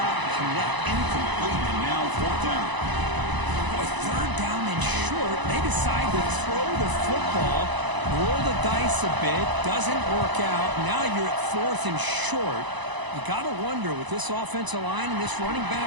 connect, incomplete, and now 4th down. With 3rd down and short, they decide to throw the football, roll the dice a bit, doesn't work out. Now you're at 4th and short. You got to wonder, with this offensive line and this running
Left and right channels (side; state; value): left; late; 1.0 ms